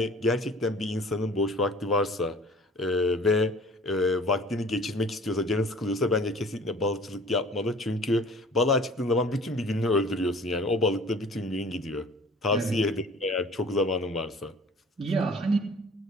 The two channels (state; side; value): normal; both; correlation 0.48